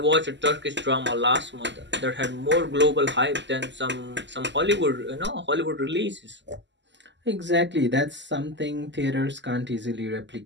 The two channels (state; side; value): late; left; 0.53 ms